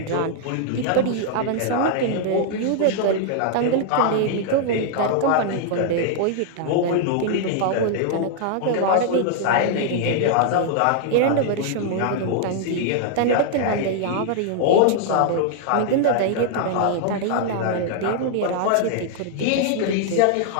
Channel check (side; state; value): both; different; correlation 0.00